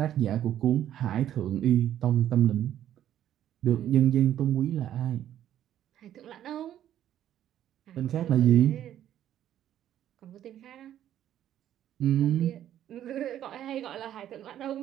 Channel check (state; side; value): quieter; left; 11.3 dB